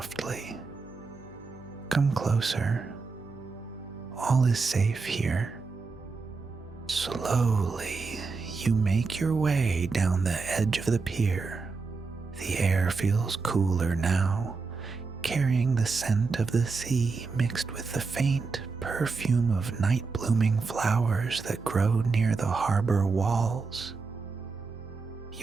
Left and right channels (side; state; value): left; quieter; 4.4 dB